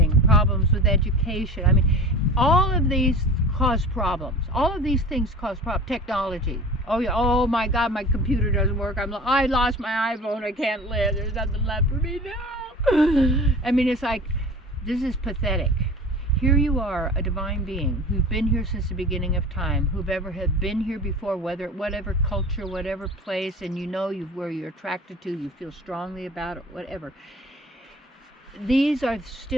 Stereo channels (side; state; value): both; normal; correlation 0.39